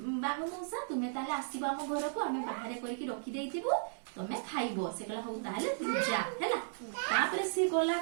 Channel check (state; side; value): silent; left; digital silence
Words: बाघ मौसा तुमे ताले आसीबा हम घर को हमें बाहर करके रखी देइथिबो तमे खाइबो। से कहला हो ताहले तू जा हैला। तापरे से गला